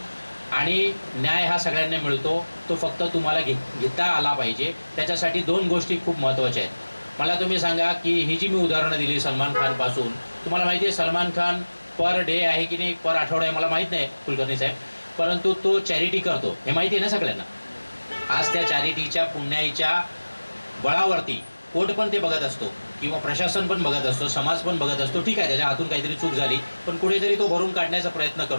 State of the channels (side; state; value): both; inverted; correlation -1.00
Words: आणि न्याय हा सगळ्यांना मिळतो, तो फक्त तुम्हाला घेता आला पाहिजे. त्याच्यासाठी 2 गोष्टी खूप महत्त्वाच्या आहेत. मला तुम्ही सांगा की ही जी मी उदाहरणं दिली सलमान खानपासून, तुम्हाला माहिती आहे सलमान खान पर डे आहे की नाही, पर आठवडा आहे मला माहीत नाही कुलकर्णी साहेब, परंतु तो चॅरिटी करतो, हे माहिती आहे ना सगळ्यांना. आज त्या चॅरिटीच्या पुण्याईच्या बळावरती कोर्ट पण ते बघत असतो किंवा प्रशासन पण बघत असतो, समाज पण बघत असतो. ठीक आहे, त्याच्या हातून काहीतरी चूक झाली, पण कुठेतरी तो भरून काढण्याचा प्रयत्न